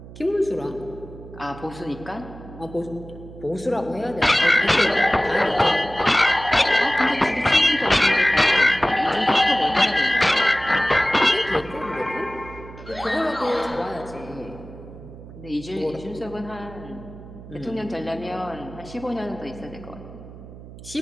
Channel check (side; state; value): right; noise; hum, 16 dB below the sound